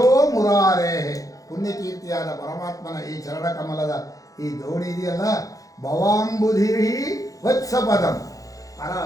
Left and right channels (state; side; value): late; right; 0.17 ms